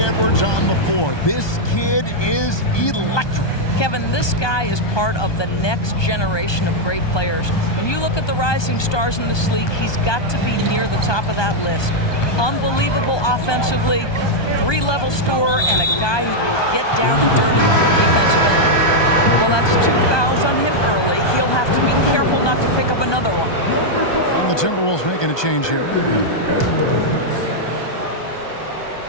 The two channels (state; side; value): late; right; 1.2 ms